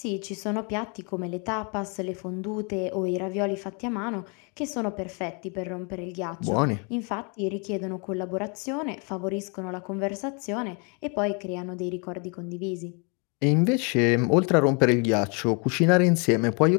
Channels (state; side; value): quieter; right; 34.8 dB